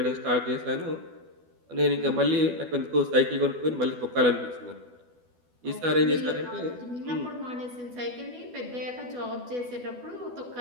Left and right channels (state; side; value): late; left; 12 ms